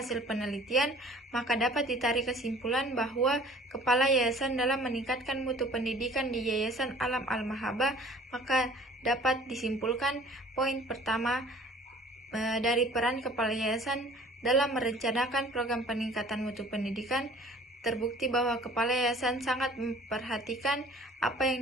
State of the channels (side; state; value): both; normal; correlation 0.50